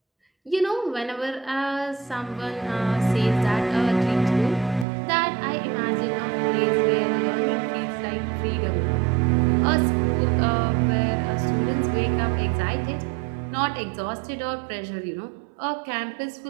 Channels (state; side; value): drops out; left; at 4.9 s